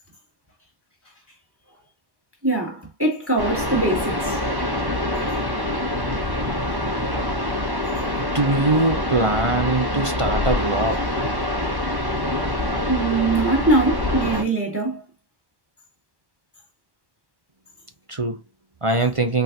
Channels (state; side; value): late; left; 1.1 ms